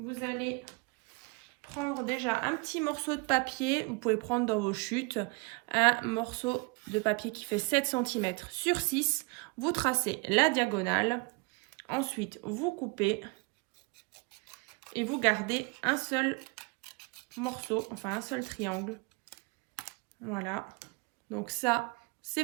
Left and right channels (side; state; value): left; quieter; 28.0 dB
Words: allez prendre déjà un petit morceau de papier. Vous pouvez prendre dans vos chutes un morceau de papier qui fait 7 cm sur 6. Vous tracez la diagonale. Ensuite, vous coupez et vous gardez un seul morceau, enfin un seul triangle. Voilà. Donc ça,